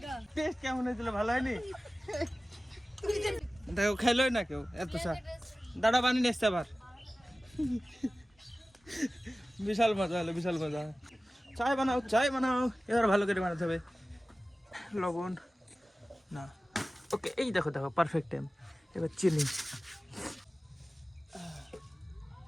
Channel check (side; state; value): both; normal; correlation 0.97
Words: টেস্ট কেমন হয়েছিল, ভালো হয়নি? দেখো খাইলোই না কেউ এত চা। দাঁড়া বানিয়ে এসছে আবার। বিশাল মজা হলো, বিশাল মজা। চায় বানাও, এবার ভালো করে বানাতে হবে। লবণ না, ওকে, এই দেখো পারফেক্ট টাইম। এবার চিনি,